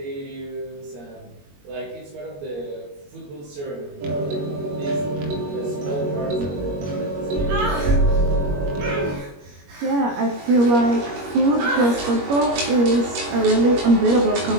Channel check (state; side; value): late; left; 21 ms